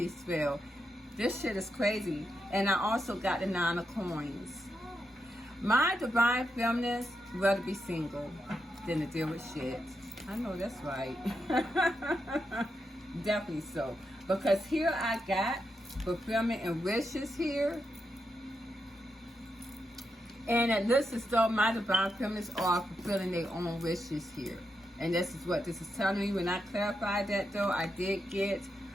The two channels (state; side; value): normal; both; correlation 0.85